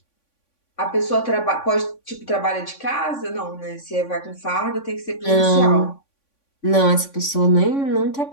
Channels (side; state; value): right; late; 3.5 ms